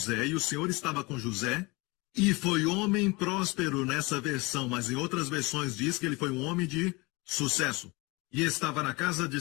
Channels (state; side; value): quieter; right; 25.2 dB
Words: e o Senhor estava com José e foi homem próspero nessa versão, mas em outras versões diz que ele foi um homem de sucesso. E estava na casa de